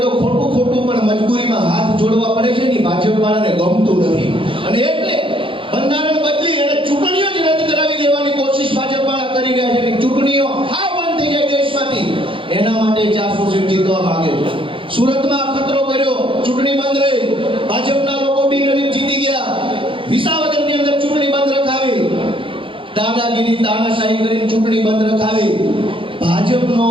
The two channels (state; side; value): late; left; 0.25 ms